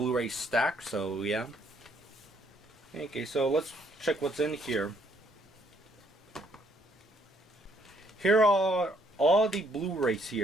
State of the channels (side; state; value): both; normal; correlation 0.68